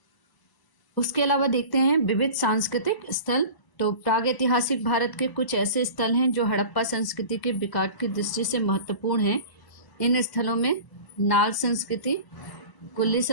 उसके अलावा देखते हैं विविध सांस्कृतिक स्थल। तो प्रागैतिहासिक भारत के कुछ ऐसे स्थल हैं जो हड़प्पा संस्कृति के विकास की दृष्टि से महत्वपूर्ण हैं। इन स्थलों में नाल संस्कृति, कुल्ली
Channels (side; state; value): right; late; 1.0 ms